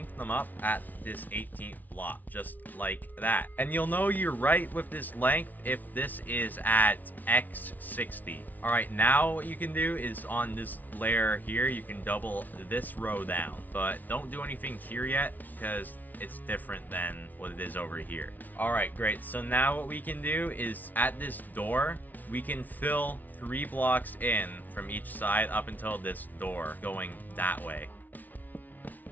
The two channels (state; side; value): late; right; 0.080 ms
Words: them up at this 18th block, just like that. And you'll know you're right with this length if this is at X60. Alright, now what you can do is on this layer here, you can double this row down. But don't do anything here yet, because it's different than what it is over here. Alright, great. So now what we can do is at this door, we can fill 3 blocks in from each side up until this door going that way.